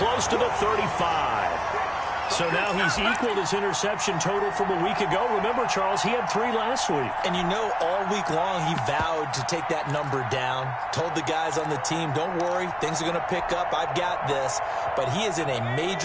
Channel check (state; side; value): identical; both; correlation 1.00